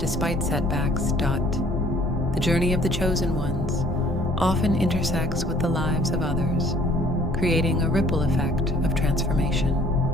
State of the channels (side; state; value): both; normal; correlation 0.57